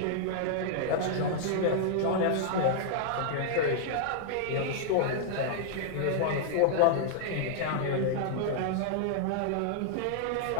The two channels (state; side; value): different; both; correlation -0.01